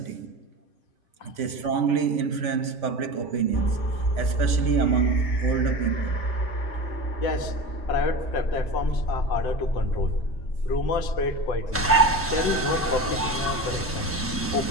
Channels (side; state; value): both; normal; correlation 0.29